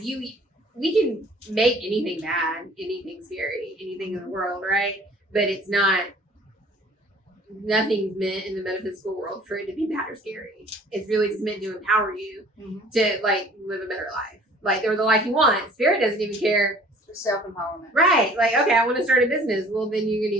can make anything bad, anything scary, anything in the world, right? But it's not, nothing's meant in the metaphysical world for it to be bad or scary. It's really just meant to empower you Mm-hmm. to like live a better life, like or the life you want. Spirit doesn't even care Self empowerment. Right. Like, okay, I want to start a business. Well, then you're going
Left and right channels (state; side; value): normal; both; correlation 0.52